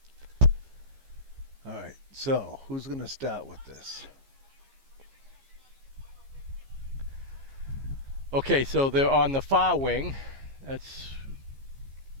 All right, so who's going to start with this? Okay, so they're on the far wing. That's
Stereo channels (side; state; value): left; late; 15 ms